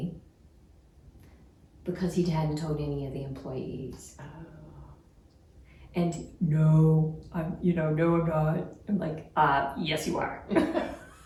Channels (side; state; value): both; identical; correlation 1.00